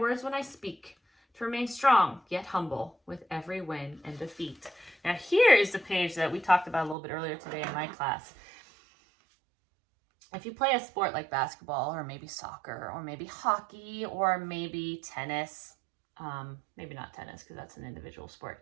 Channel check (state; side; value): drops out; left; at 7.0 s